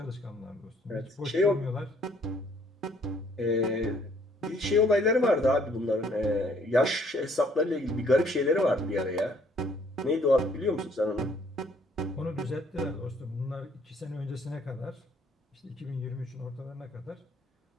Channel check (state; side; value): normal; both; correlation 0.62